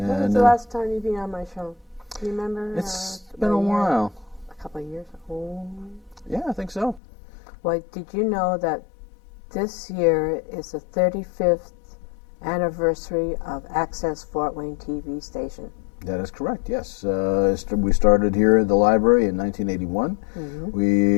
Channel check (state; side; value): drops out; right; at 7.0 s